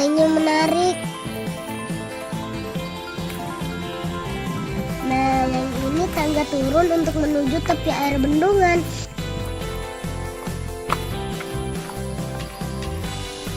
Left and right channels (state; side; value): identical; both; correlation 1.00